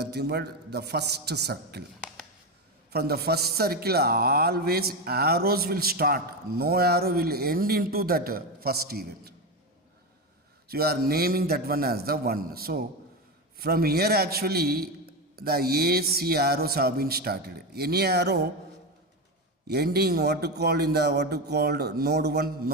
but the first circle. From the first circle, always arrows will start. No arrow will end into that first event. So you are naming that one as the 1. So from here actually the A, C arrows have been started. Any arrow ending what to call in the what to called node 1?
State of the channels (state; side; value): normal; both; correlation 0.15